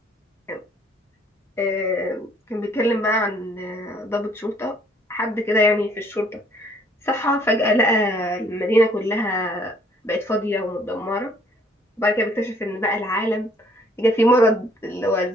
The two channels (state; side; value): normal; both; correlation 0.62